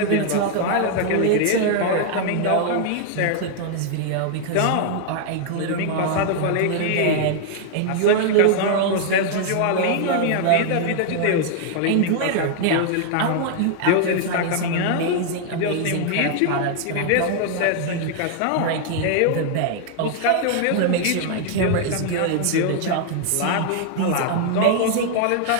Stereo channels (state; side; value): different; both; correlation 0.00